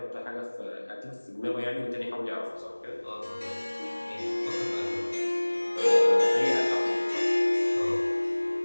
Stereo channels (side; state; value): both; inverted; correlation -1.00